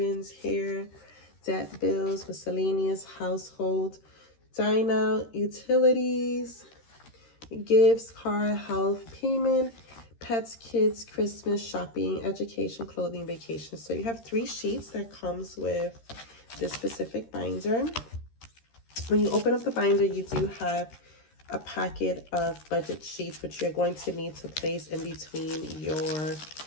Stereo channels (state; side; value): late; right; 13 ms